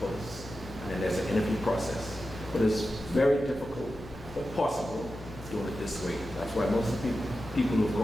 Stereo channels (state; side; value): noise; left; hum, 18 dB below the sound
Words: posts, and then there's an interview process. But it's very difficult, but possible, doing it this way. That's why most of the people who've